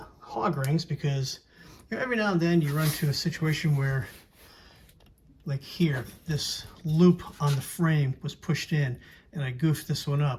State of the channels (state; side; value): identical; both; correlation 1.00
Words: hog rings, because you know, every now and then you run into a situation where, like here, this loop on the frame was pushed in and I goofed this one